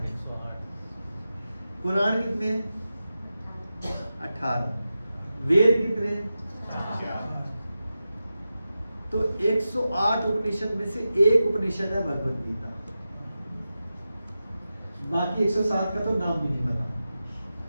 पुराण कितने हैं? 18। वेद कितने हैं? 4। तो 108 उपनिषद में से एक उपनिषद है भगवत गीता, बाकी 107 का तो नाम भी नहीं पता,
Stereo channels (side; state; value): both; inverted; correlation -0.92